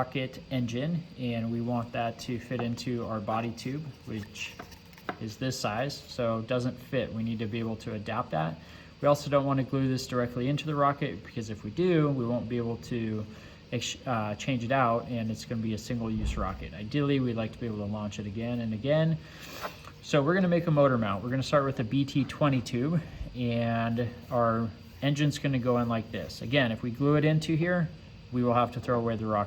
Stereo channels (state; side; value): identical; both; correlation 1.00